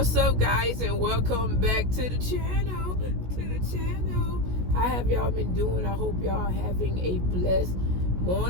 up, guys, and welcome back to the channel. How have y'all been doing? I hope y'all having a blessed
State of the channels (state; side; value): late; left; 16 ms